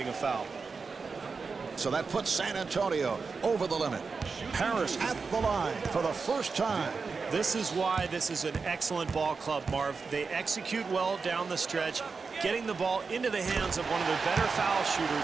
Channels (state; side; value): quieter; left; 4.8 dB